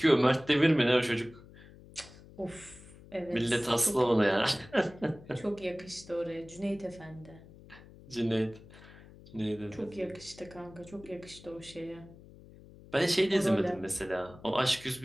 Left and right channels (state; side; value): noise; left; hum, 20 dB below the sound